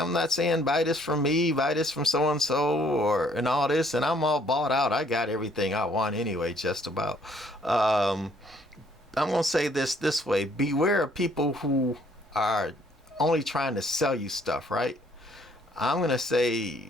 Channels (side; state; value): both; normal; correlation 0.63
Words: not saying buy this from me, buy this from so and so, and all this, and I'm all bought out. I got everything I want anyway, just about. I'm gonna say this way: beware of people who are only trying to sell you stuff, right? I'm gonna